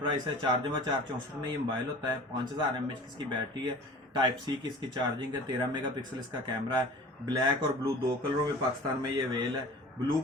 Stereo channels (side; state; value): both; normal; correlation 0.42